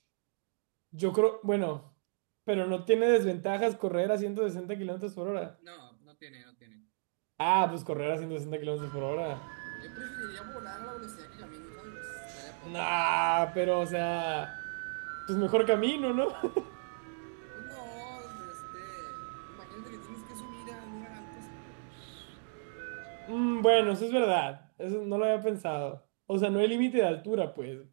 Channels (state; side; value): silent; left; digital silence